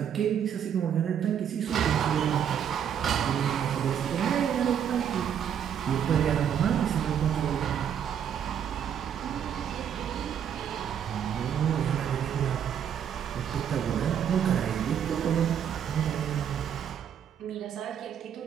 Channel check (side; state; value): left; quieter; 8.7 dB